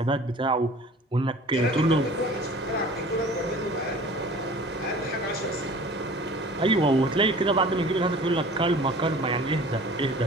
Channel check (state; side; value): normal; both; correlation 0.45